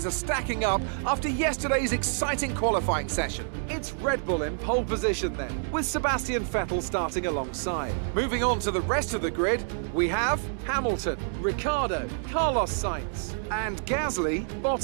are stacking up after yesterday's exciting qualifying session. It's Red Bull in pole position then, with Sebastian Vettel starting alongside. Moving on to the rest of the grid, we have Hamilton, Ricciardo, Carlos Sainz, and Gasly,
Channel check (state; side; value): silent; left; digital silence